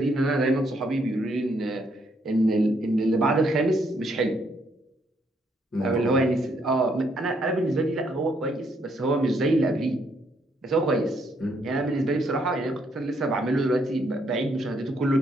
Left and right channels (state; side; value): normal; both; correlation 0.72